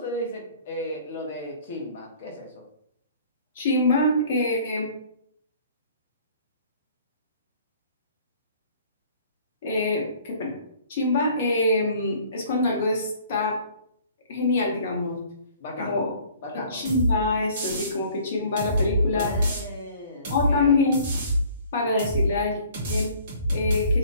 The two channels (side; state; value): both; inverted; correlation -0.54